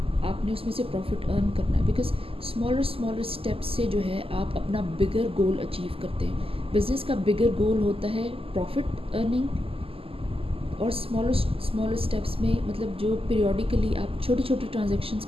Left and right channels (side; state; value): left; late; 0.27 ms